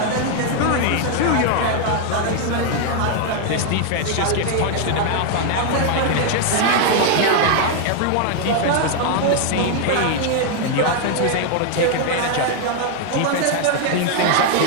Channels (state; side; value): different; both; correlation 0.00